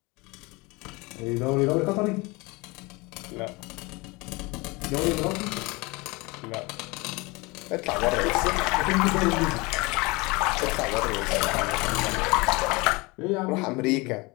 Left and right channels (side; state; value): right; quieter; 25.1 dB